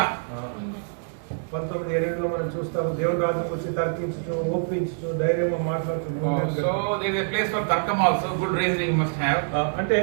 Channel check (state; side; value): silent; left; digital silence